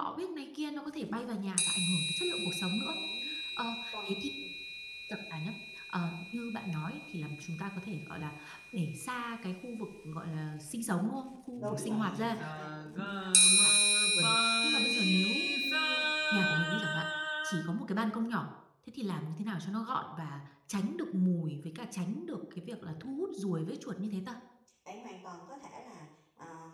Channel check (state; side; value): identical; both; correlation 1.00